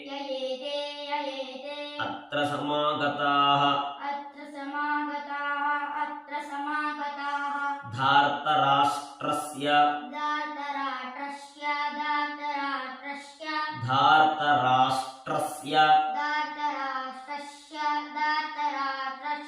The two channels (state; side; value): identical; both; correlation 1.00